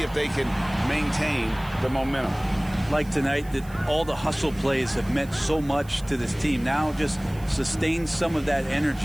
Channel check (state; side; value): noise; right; hiss, 23 dB below the sound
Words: they can maintain the momentum. Like tonight, that all the hustle plays have meant so much to this team. Now just sustain some of that